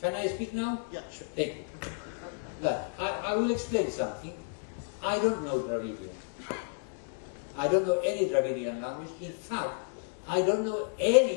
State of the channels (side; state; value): right; silent; digital silence